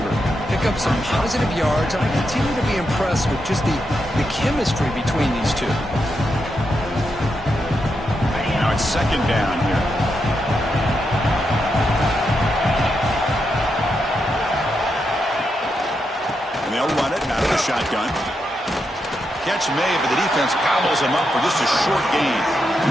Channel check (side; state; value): both; normal; correlation 0.84